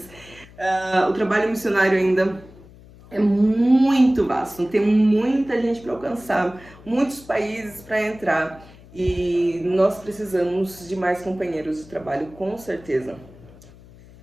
O trabalho missionário ainda é muito vasto, tem muita gente para alcançar, muitos países para entrar e nós precisamos de mais companheiros de trabalho, com certeza.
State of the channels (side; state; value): left; noise; hum, 22 dB below the sound